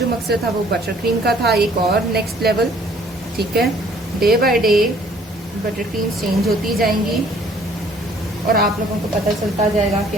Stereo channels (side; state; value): both; normal; correlation 0.58